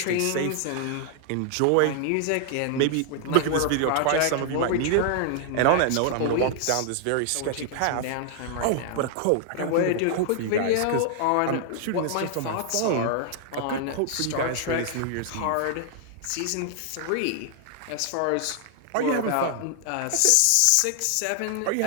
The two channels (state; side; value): different; both; correlation 0.00